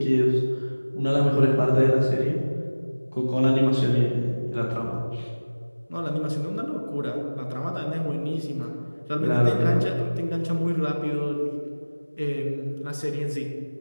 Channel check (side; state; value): both; inverted; correlation -1.00